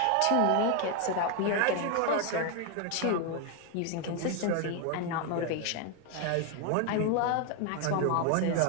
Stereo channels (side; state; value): both; different; correlation 0.01